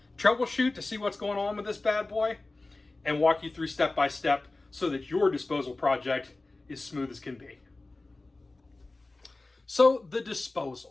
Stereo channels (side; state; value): right; quieter; 3.2 dB